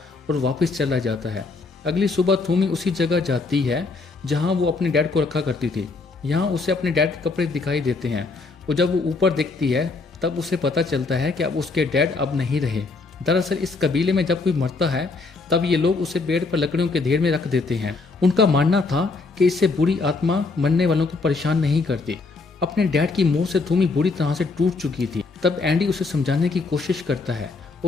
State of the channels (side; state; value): right; quieter; 3.9 dB